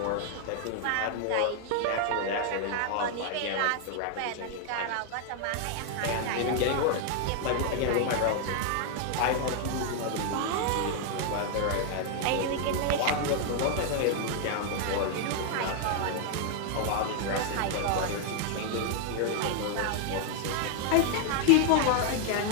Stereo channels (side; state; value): both; different; correlation 0.00